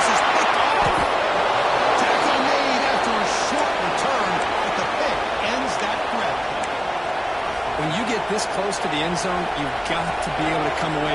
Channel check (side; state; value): both; identical; correlation 1.00